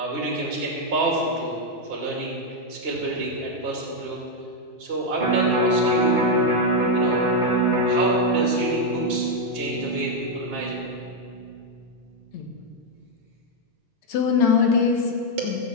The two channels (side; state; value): both; normal; correlation 0.01